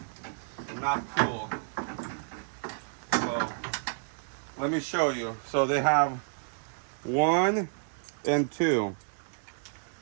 not cool. So, let me show you. So they have 1 and 2.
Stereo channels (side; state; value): left; silent; digital silence